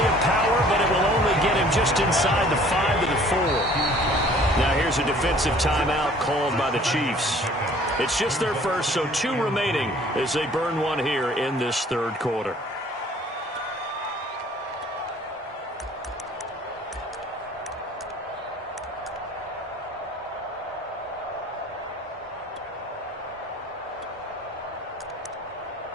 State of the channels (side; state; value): both; normal; correlation 0.53